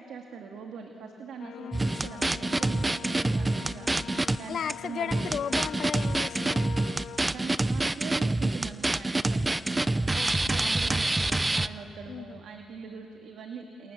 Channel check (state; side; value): normal; both; correlation 0.95